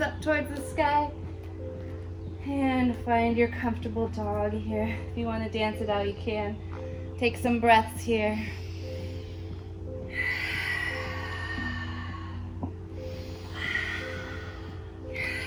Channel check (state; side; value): identical; both; correlation 1.00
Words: up towards the sky. And find your comfortable dog here. If you want to dance it out, you can. Take some breaths here.